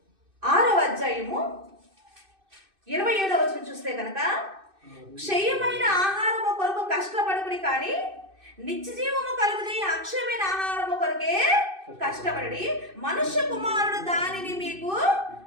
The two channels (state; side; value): late; left; 2.6 ms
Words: 6వ అధ్యాయము 27వ వచనం చూస్తే కనుక, క్షయమైన ఆహారము కొరకు కష్టపడుకుడి, కానీ నిత్య జీవము కలుగుజేయ అక్షయమైన ఆహారము కొరకే కష్టపడి మనుష్య కుమారుడు దానిని మీకు